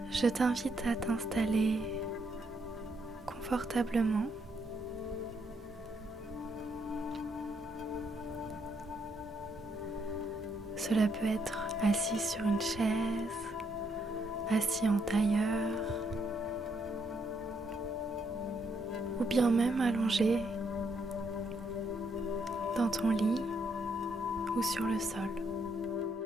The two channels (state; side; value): normal; both; correlation 0.74